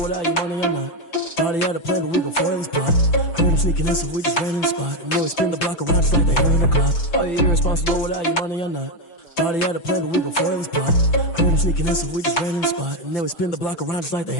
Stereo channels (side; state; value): right; late; 5.9 ms